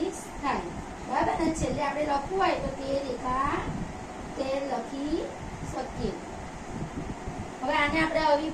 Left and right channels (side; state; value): both; identical; correlation 1.00